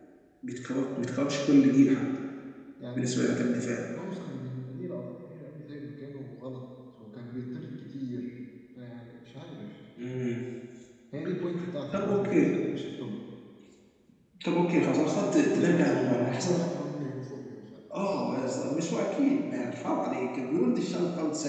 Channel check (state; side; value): identical; both; correlation 1.00